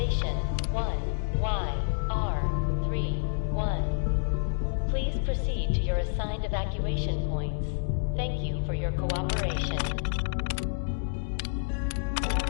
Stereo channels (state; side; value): silent; right; digital silence